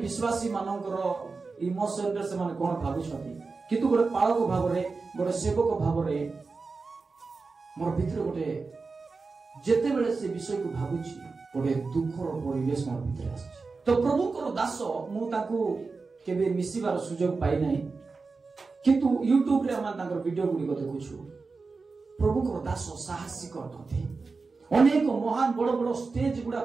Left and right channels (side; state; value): left; quieter; 4.2 dB